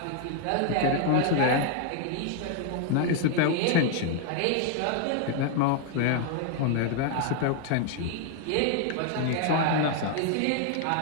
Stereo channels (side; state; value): both; different; correlation 0.00